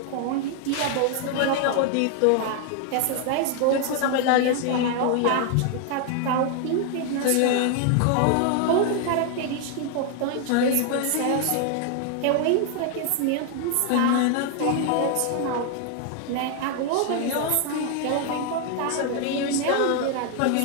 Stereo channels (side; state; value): both; different; correlation 0.00